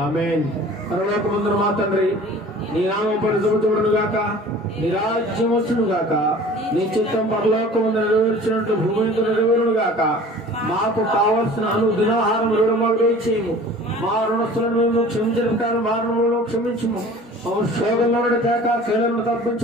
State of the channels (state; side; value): normal; both; correlation 0.45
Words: ఆమేన్. పరలోకమందున మా తండ్రి, నీ నామం పరిశుద్ధపరచబడును గాక, నీ రాజ్యం వచ్చును గాక, నీ చిత్తం పరలోకమందు నెరవేర్చినట్టు భూమి మీద నెరవేరును గాక. మాకు కావలసిన అనుదినాహారం మాకు దయచేయము. మా రుణస్తులను మేము క్షమించిన ప్రకారం మా రుణములను క్షమించుము. శోధంలో తేక కీలను